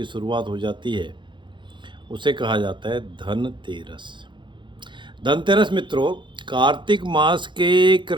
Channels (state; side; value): late; left; 0.23 ms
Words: शुरुआत हो जाती है। उसे कहा जाता है धनतेरस। धनतेरस मित्रों, कार्तिक मास के